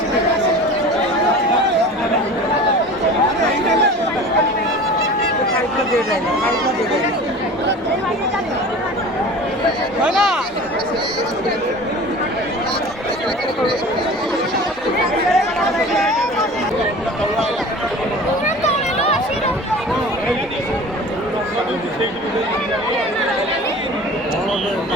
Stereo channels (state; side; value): normal; both; correlation 0.39